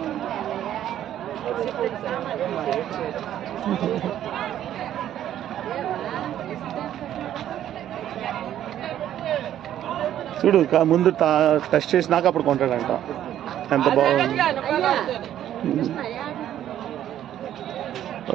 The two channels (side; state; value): left; quieter; 11.4 dB